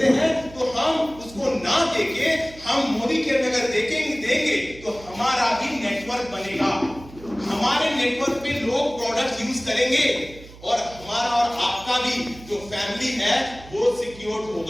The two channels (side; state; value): right; noise; hum, 19 dB below the sound